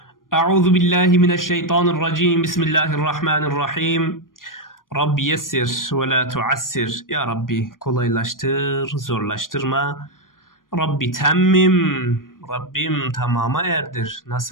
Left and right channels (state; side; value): late; right; 0.90 ms